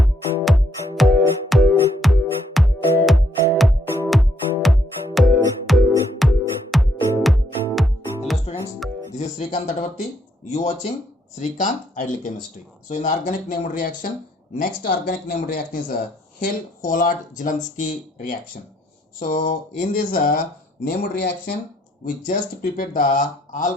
students, this is Srikanth Tatavarti. You watching Srikanth Ideal Chemistry. So in the organic named reaction, next organic named reaction is a Hill-Hollard-Zielinski reaction. So in this named reaction, we just prepared the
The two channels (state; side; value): normal; both; correlation 0.71